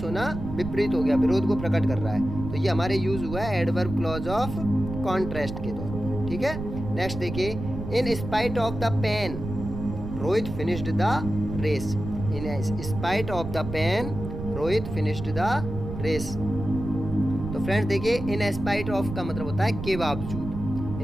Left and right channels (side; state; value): right; noise; rumble, 8 dB below the sound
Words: होना विपरीत हो गया, विरोध को प्रकट कर रहा है। तो ये हमारे यूज हुआ है एडवर्ब क्लॉज ऑफ कॉन्ट्रास्ट के तौर पर, ठीक है। नेक्स्ट देखिए, in spite of the pain Rohit finished the race. In spite of the pain Rohit finished the race. तो फ्रेंड्स देखिए, इन स्पाइट ऑफ का मतलब होता है के बावजूद।